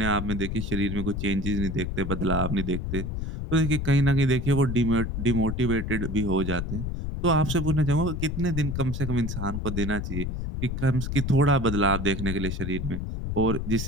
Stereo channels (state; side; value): noise; left; rumble, 4 dB below the sound